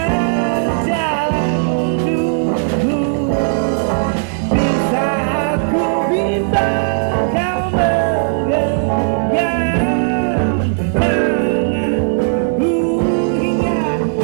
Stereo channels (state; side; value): silent; left; digital silence